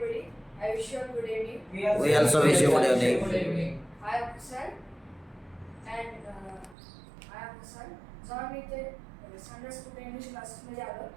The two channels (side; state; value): left; drops out; at 6.8 s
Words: I wish you a good evening. We also wish you good evening. I am Hassan and I am Hassan. जेव्हा मी इथे Sunday school English क्लासेसमध्ये आलो